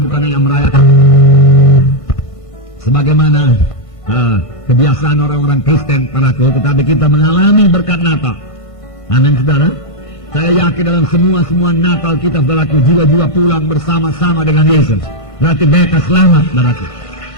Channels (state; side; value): late; right; 1.5 ms